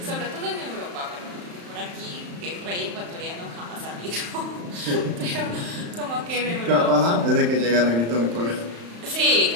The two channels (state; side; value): late; left; 35 ms